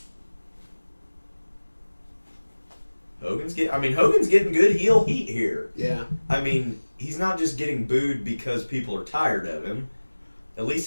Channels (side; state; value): both; inverted; correlation -1.00